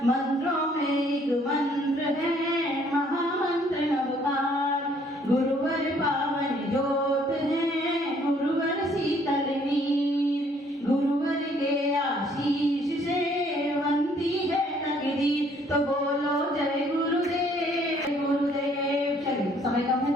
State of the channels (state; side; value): normal; both; correlation 0.63